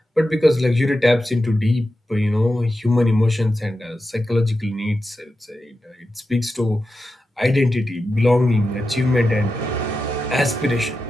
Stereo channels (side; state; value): both; normal; correlation 0.90